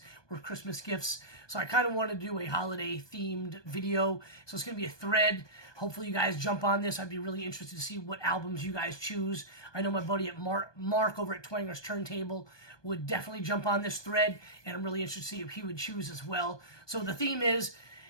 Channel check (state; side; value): late; right; 1.2 ms